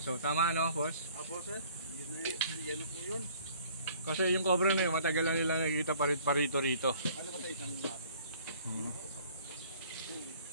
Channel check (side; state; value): both; inverted; correlation -0.55